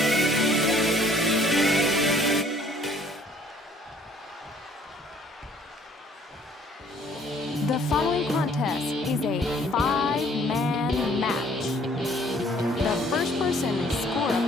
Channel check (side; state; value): both; normal; correlation 0.59